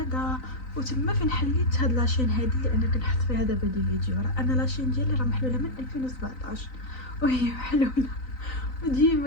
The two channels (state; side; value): late; right; 3.9 ms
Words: وتما فين حليت هاد لاشين هادي اللي انا كنحط فيها دابا دي فيديو. راه انا لاشين ديالي راه محلوله من 2017 وهي محلوله،